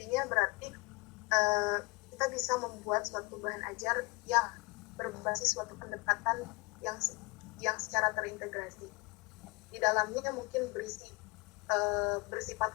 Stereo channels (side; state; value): right; quieter; 27.1 dB